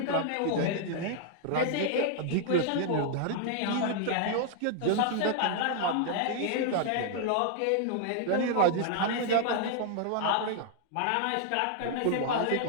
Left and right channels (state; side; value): different; both; correlation 0.00